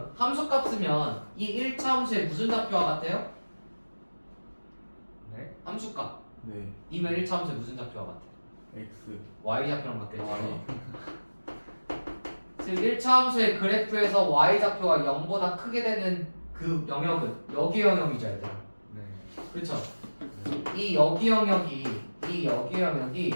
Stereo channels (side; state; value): both; inverted; correlation -1.00